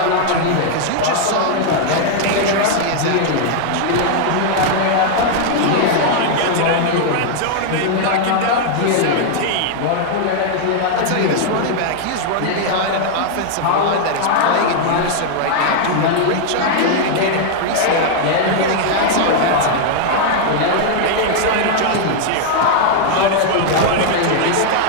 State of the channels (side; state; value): both; different; correlation 0.00